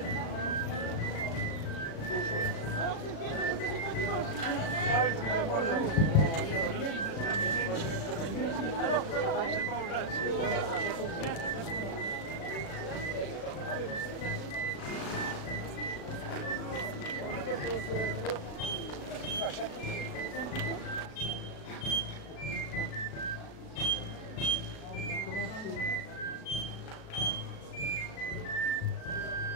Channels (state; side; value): late; right; 36 ms